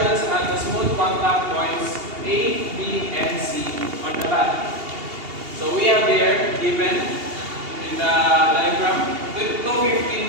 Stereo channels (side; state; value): left; late; 2.8 ms